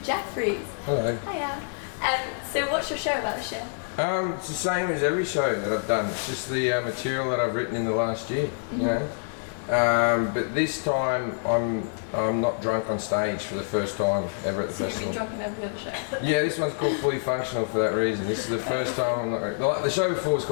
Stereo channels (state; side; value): silent; right; digital silence